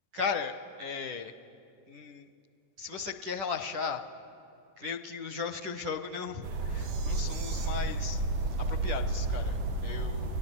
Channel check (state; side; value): late; left; 10 ms